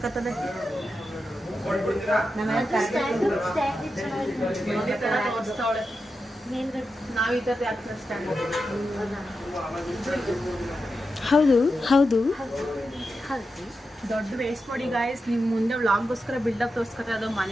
ಹೌದು ಹೌದು. ದೊಡ್ಡ ವೇಸ್ಟ್ ಮಾಡಿ ಗಾಯ್ಸ್, ನಿಮ್ ಮುಂದೆ ವ್ಲಾಗ್ಗೋಸ್ಕರ ಬಿಲ್ಡಪ್ ತೋರಿಸ್ಕೊತಾರೆ. ಅದು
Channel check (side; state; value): both; normal; correlation 0.89